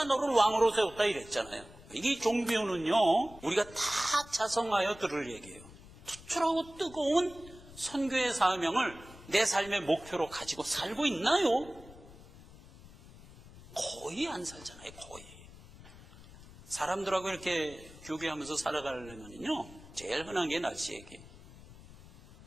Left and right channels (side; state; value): left; noise; rumble, 19 dB below the sound